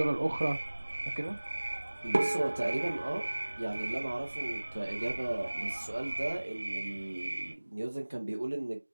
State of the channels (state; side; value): inverted; both; correlation -1.00